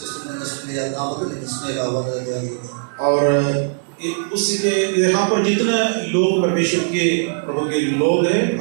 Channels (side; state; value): left; silent; 64 dB below the other